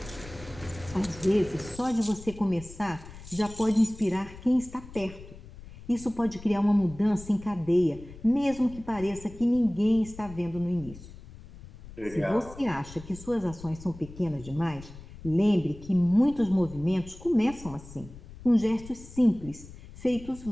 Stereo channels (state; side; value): noise; left; rumble, 17 dB below the sound